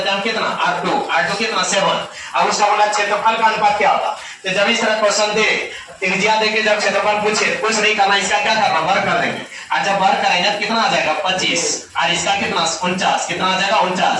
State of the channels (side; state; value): both; identical; correlation 1.00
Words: हैं हम कितना R2 कितना 7, अब उसका बोला क्षेत्रफल का अनुपात क्या होगा। तो जब इस तरह क्वेश्चन दे, त्रिज्या देके जब क्षेत्रफल पूछे, कुछ नहीं करना, इसका क्या करना, वर्ग कर देंगे, और जब वर्ग करेंगे तो कितना आ जाएगा 25 और इसका कितना 49, कितना आ जाएगा 49,